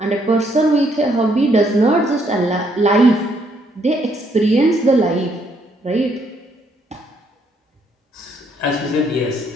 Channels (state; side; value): normal; both; correlation 0.71